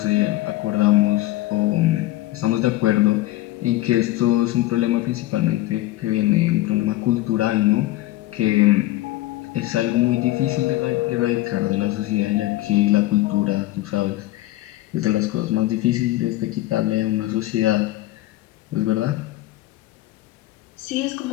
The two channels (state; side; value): quieter; right; 16.8 dB